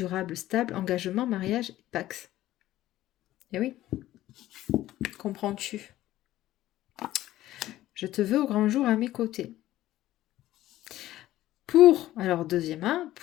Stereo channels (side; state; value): right; quieter; 14.7 dB